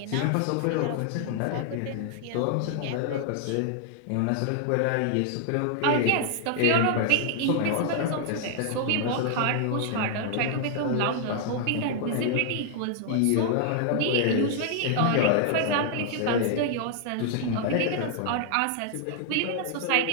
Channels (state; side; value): different; both; correlation 0.00